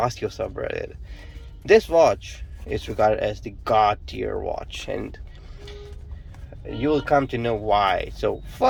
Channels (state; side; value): identical; both; correlation 1.00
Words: subreddit, this watch is regarded as the God tier watch, and you'll come to know why. So